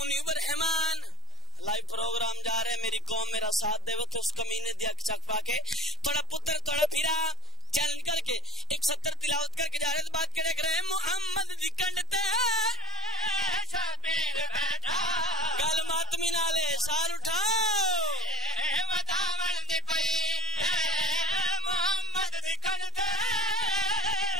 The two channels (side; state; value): both; normal; correlation 0.07